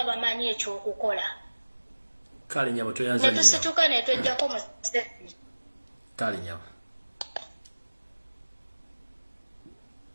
bamanyi ekyokukola kale nyabo toyanza ne tusituka ne twejjako Museveni kale nyabo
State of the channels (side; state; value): both; inverted; correlation -1.00